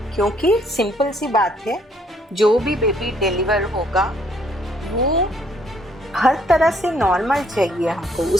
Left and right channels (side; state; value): both; normal; correlation 0.66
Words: क्योंकि सिंपल सी बात है, जो भी बेबी डिलीवर होगा वो हर तरह से नॉर्मल चाहिए हमको।